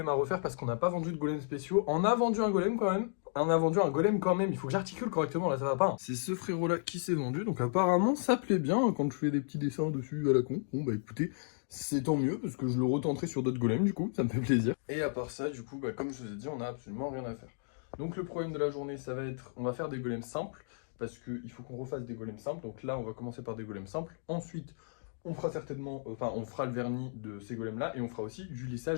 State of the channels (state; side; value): silent; right; digital silence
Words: à refaire parce qu'on n'a pas vendu de golem spéciaux. On a vendu un golem quand même. On a vendu un golem quand même, il faut que j'articule correctement, là ça va pas. Hein. C'est ce frérot là qui s'est vendu, donc apparemment ça plaît bien quand je fais des petits dessins dessus à la con. Bon bah écoutez, c'est tant mieux parce que je le retenterai sur d'autres golems du coup, ça me fait plaisir. Et à part ça, du coup, bah, comme je vous ai dit, on a absolument rien à faire. Donc le problème de la journée, ça va être, on va faire des golems simples, parce qu'il faut qu'on refasse des golems simples. Donc là, on va commencer par des golems simples. Ensuite, on fera certainement, on fera le vernis de ces golems-là, et on fera aussi du